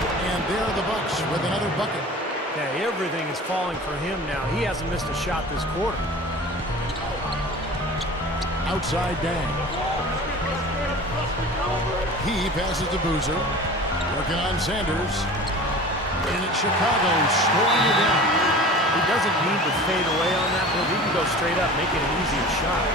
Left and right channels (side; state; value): both; normal; correlation 0.39